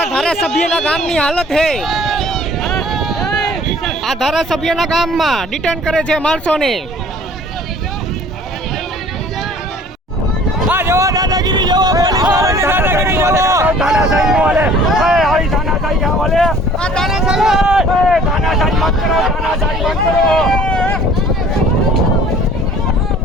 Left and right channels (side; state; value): both; normal; correlation 0.51